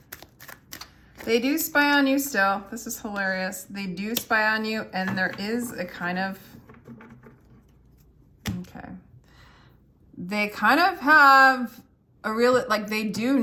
They do spy on you still. This is hilarious. They do spy on you, and there is a kind of... Okay. They kind of have a real... Like, they do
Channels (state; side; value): identical; both; correlation 1.00